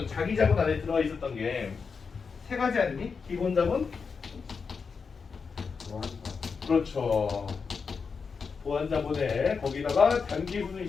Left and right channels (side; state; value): right; quieter; 5.4 dB